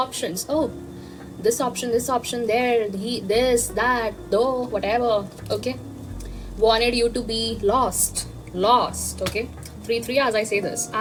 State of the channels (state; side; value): identical; both; correlation 1.00